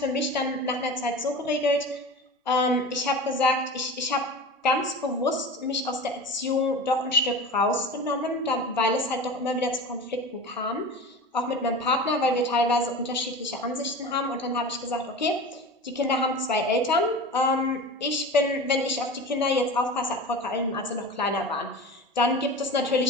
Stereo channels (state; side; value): normal; both; correlation 0.32